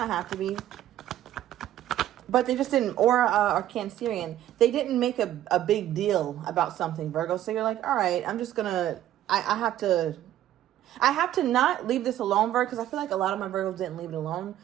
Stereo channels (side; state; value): left; quieter; 12.6 dB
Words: have to be, but they just didn't, or Cancerian, they didn't make a big deal about something, Virgo. So you're like, all right, I'm just gonna, I have to not leave this alone, Virgo, because I feel like a lot of my Virgos didn't leave it alone.